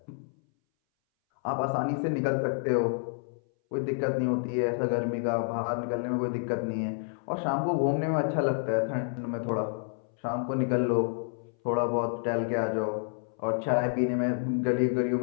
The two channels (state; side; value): silent; right; 59 dB below the other